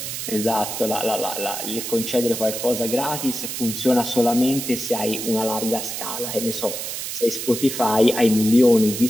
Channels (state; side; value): noise; right; hiss, 5 dB below the sound